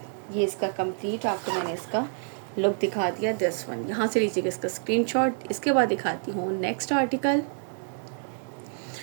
ये इसका कंप्लीट आपको मैंने इसका लुक दिखा दिया। दिस वन, यहाँ से लीजिएगा इसका स्क्रीनशॉट। इसके बाद दिखाती हूँ नेक्स्ट आर्टिकल।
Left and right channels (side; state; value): left; silent; 60 dB below the other